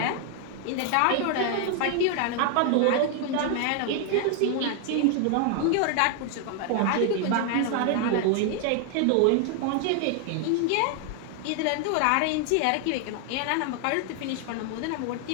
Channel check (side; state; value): both; different; correlation 0.00